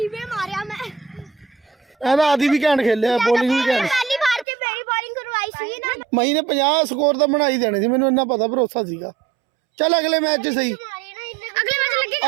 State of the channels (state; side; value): drops out; left; at 4.5 s